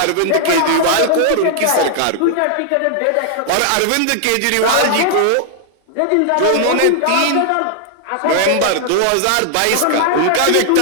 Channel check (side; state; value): both; different; correlation 0.00